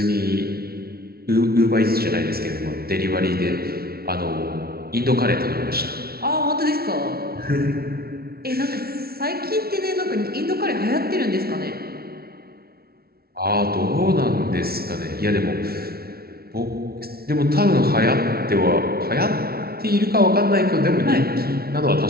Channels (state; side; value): late; left; 0.44 ms